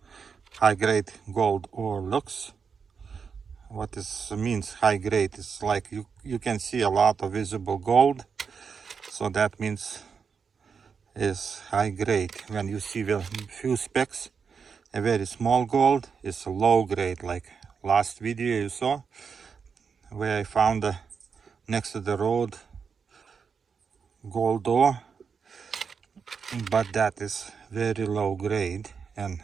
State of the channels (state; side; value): quieter; left; 6.0 dB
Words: high-grade gold ore looks. What this means high grade is like you can see a lot of visible gold, so that means is high grade. When you see a few specks, a very small gold, is low grade, like last video you saw where I found next to the road gold ore, but that is very low grade and